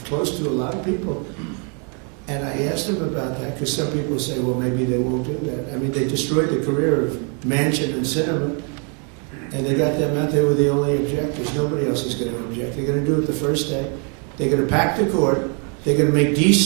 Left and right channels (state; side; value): quieter; left; 38.6 dB